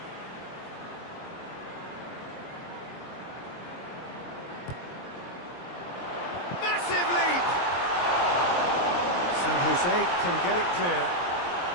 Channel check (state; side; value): late; right; 23 ms